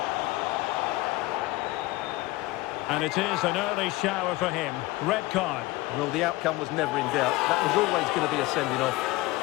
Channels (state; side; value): quieter; right; 19.8 dB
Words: And it is an early shower for him. Red card. Well, the outcome was never in doubt. That was always going to be a sending off.